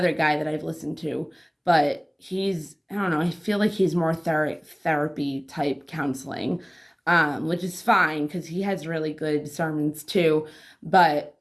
guy that I've listened to, but I don't know, I feel like he's more therapy type counseling, which is fine because he has really good sermons too. But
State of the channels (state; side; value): identical; both; correlation 1.00